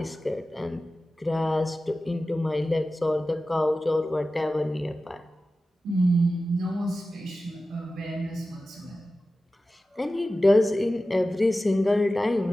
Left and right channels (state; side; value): normal; both; correlation 0.95